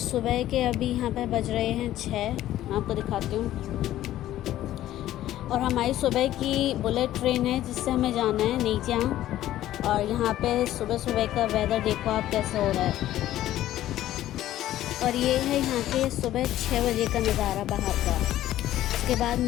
के अभी यहाँ पे बज रहे हैं 6। मैं आपको दिखाती हूँ। और हमारी सुबह की बुलेट ट्रेन है जिससे हमें जाना है नीचियांग। और यहाँ पे सुबह सुबह का वेदर देखो आप कैसे हो रहा है। और ये है यहाँ के सुबह 6 बजे का नज़ारा बाहर का। उसके बाद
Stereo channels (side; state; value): right; quieter; 13.5 dB